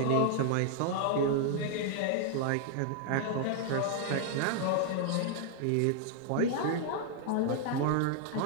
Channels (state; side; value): different; both; correlation 0.00